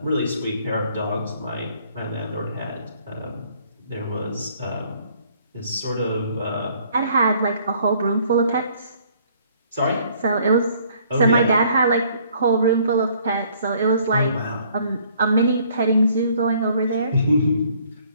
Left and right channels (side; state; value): both; inverted; correlation -0.61